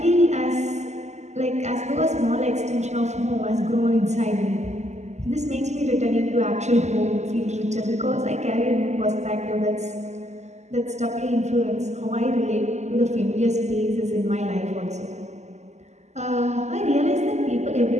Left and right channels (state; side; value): late; left; 0.33 ms